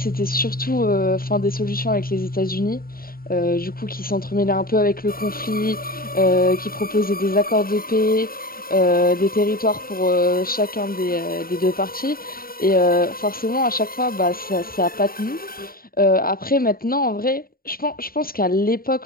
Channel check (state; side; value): late; right; 0.43 ms